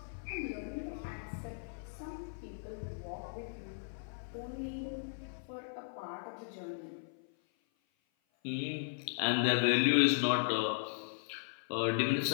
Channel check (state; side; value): silent; right; 53 dB below the other